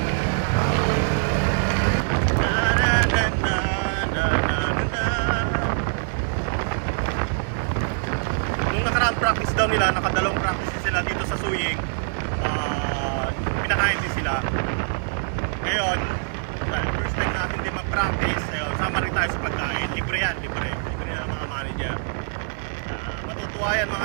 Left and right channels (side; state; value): left; silent; digital silence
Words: Nung nakaraang practice daw nila, nakadalawang practice sila dito sa Suying. Pinakain din sila. Ngayon, dahil first time natin din mag-practice, sama rin tayo sa pagkain. Libre yan, libre ng mga manager. Matutuwa yan